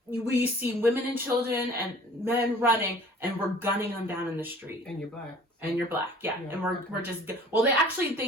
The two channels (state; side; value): normal; both; correlation 0.49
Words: we see women and children and men running and we're gunning them down in the street. And you're Black. And you're Black, yeah. And we're just, well,